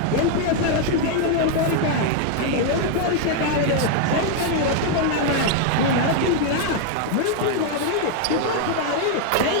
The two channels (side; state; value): both; different; correlation 0.00